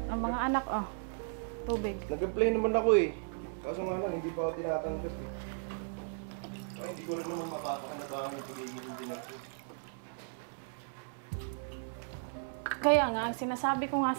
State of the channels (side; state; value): left; silent; 54 dB below the other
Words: Ang mga anak, tubig. Nag-apply naman ako eh. Kaso nga lang, hindi pa ako tinatanggap eh. Ay, hindi ko rin naman mapapakanabangan yung pagiging hindi natin. Kaya nga, ang sinasabi ko nga